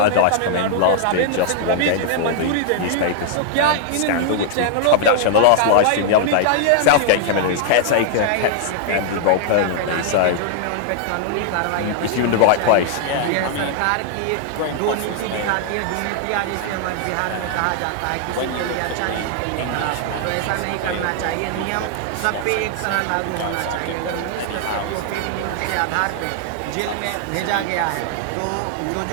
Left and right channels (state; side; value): different; both; correlation 0.00